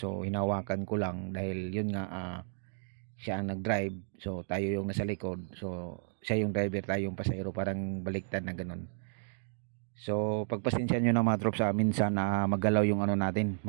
hinawakan ko lang dahil yun nga, siya ang nag-drive, so tayo yung nasa likod. So siya yung driver, tayo yung pasahero, parang baliktad na ganun. So pagpasensya nyo na mga trops, minsan magalaw yung natin,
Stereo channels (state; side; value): silent; left; digital silence